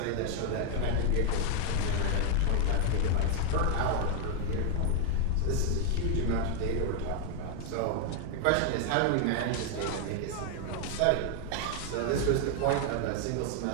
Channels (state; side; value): different; both; correlation 0.00